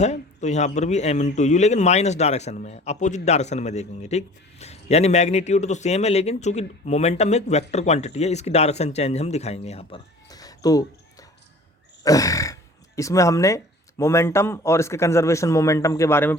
तो यहाँ पर भी m इंटू यू, लेकिन माइनस डायरेक्शन में है, अपोजिट डायरेक्शन में देखेंगे, ठीक। यानी मैग्नीट्यूड तो सेम है, लेकिन चूंकि मोमेंटम एक वेक्टर क्वांटिटी है, इसकी डायरेक्शन चेंज हम दिखाएंगे यहाँ पर। तो इसमें हमने मोमेंटम और इसके कंजर्वेशन मोमेंटम के बारे में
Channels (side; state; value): both; normal; correlation 0.46